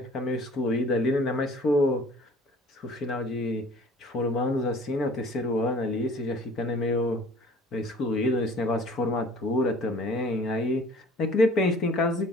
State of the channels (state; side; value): normal; both; correlation 0.50